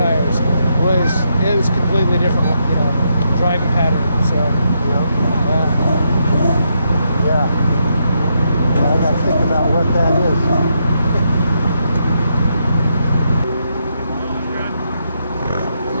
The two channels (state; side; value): inverted; both; correlation -0.80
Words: It was completely different, you know, driving pattern. So Yeah. I got to think about what that is.